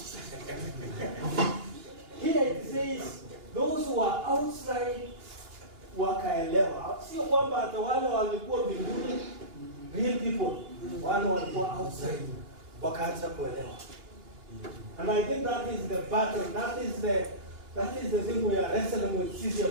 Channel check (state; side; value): late; left; 2.9 ms